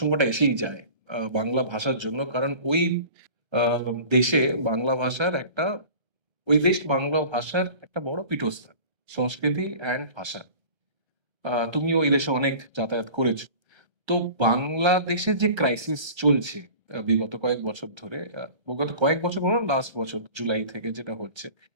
এসেই যায় বাংলা ভাষার জন্য, কারণ আহ, দেশে বাংলা ভাষার একটা বাংলা ভাষার একটা বড় পীঠস্থান, সংস্কৃতি অ্যান্ড ভাষা। তুমি ওই দেশে অনেক যাতায়াত করেছো। তো বাংলাদেশে যে ক্রাইসিস চলছে বিগত কয়েক বছর ধরে, বিগত কয়েক বছর বলো, লাস্ট বছর জুলাই থেকে যেটা হচ্ছে,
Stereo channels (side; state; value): left; late; 1.3 ms